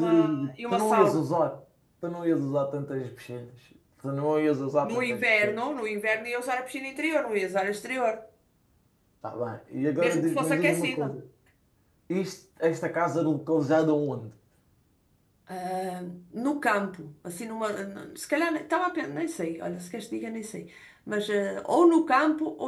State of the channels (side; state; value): both; identical; correlation 1.00